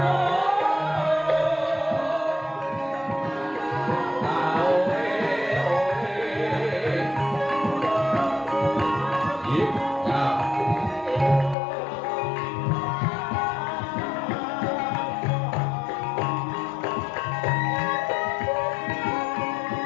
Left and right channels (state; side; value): drops out; right; at 11.6 s